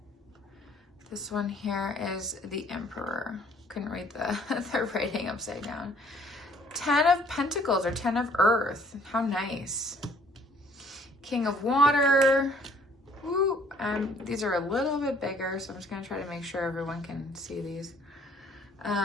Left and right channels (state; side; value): normal; both; correlation 0.59